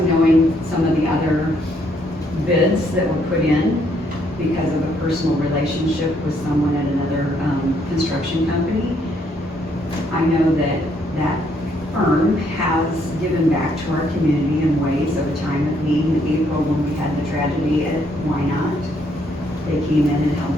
knowing some of the other bids that were put in because of a personal relationship with someone at another construction company, I know that that firm has given back to our community in ways of a time of need in April when we had the tragedy at Wine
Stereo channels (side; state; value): both; normal; correlation 0.70